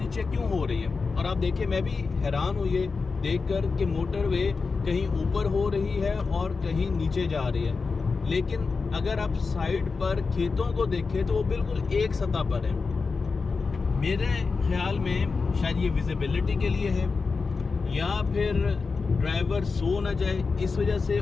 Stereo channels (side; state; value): right; quieter; 4.6 dB